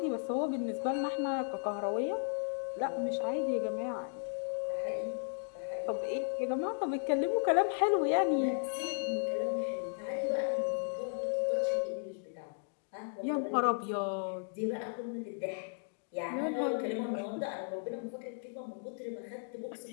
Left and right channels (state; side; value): silent; right; digital silence